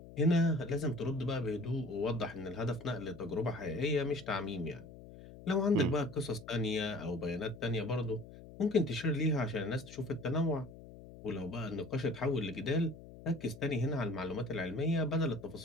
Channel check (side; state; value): left; noise; hum, 16 dB below the sound